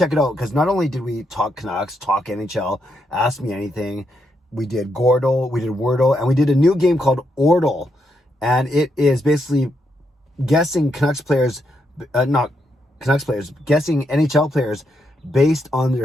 it out, because not only did we talk Canucks, talk NHL, ask me anything, we did Gordle, we did Wordle, and we did a new game called Ordle. And it is basically guessing guessing NHL players based on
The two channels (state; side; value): normal; both; correlation 0.80